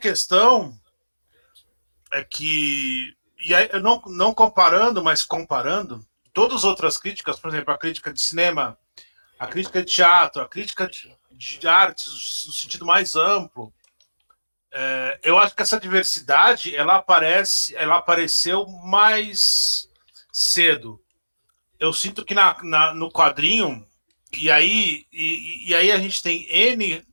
é que, e aí, eu não comparando, mas comparando, todas as outras críticas, por exemplo, a crítica de cinema, a crítica de teatro, a crítica de artes no sentido mais amplo, eu acho que essa diversidade ela apareceu mais cedo. Eu sinto que no quadrinho, e aí a gente tem N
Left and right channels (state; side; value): inverted; both; correlation -1.00